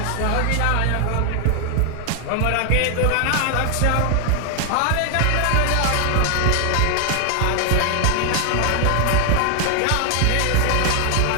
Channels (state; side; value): different; both; correlation 0.00